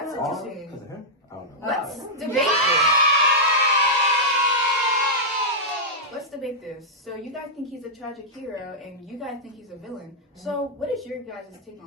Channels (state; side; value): normal; both; correlation -0.09